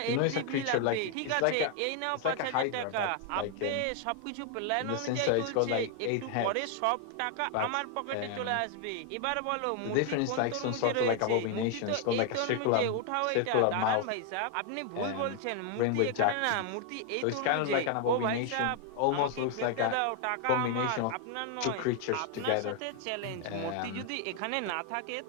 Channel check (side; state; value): both; different; correlation 0.00